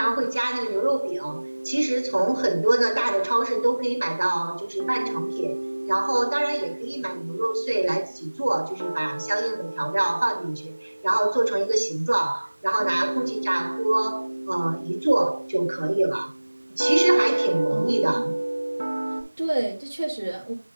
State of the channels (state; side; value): inverted; both; correlation -1.00